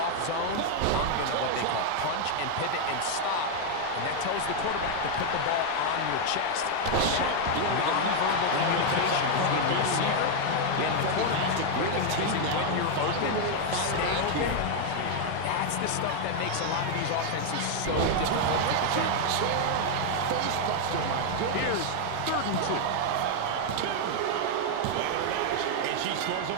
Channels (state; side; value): different; both; correlation 0.00